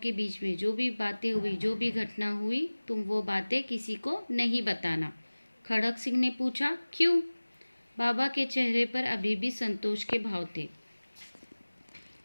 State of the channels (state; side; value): inverted; both; correlation -1.00